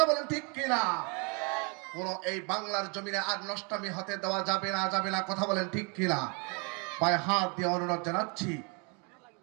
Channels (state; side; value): quieter; left; 33.5 dB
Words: বলেন ঠিক কিনা? কোন এই বাংলার জমিনে আর নষ্টামি হতে দেওয়া যাবে না কথা বলেন ঠিক কিনা? পায়ে হাত দিয়ে অনুরোধ জানাচ্ছি,